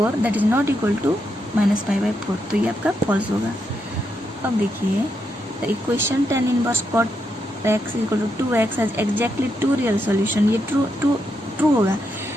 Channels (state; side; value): normal; both; correlation 0.81